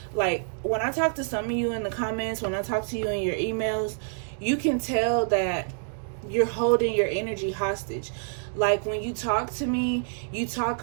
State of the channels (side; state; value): left; silent; digital silence